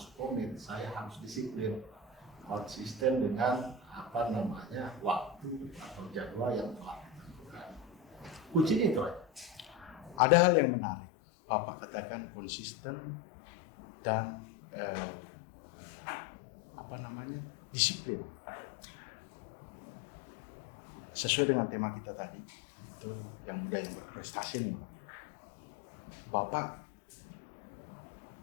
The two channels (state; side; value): drops out; right; at 10.2 s